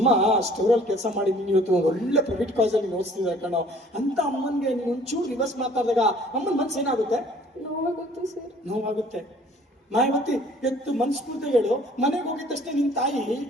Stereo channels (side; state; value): both; normal; correlation 0.54